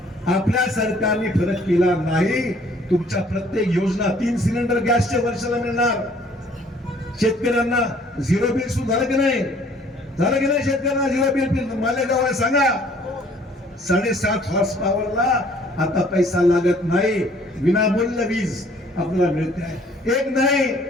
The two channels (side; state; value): both; normal; correlation 0.58